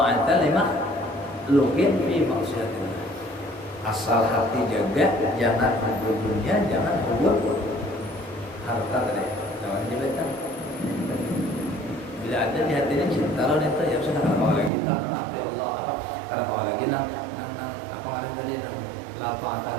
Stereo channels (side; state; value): left; drops out; at 14.7 s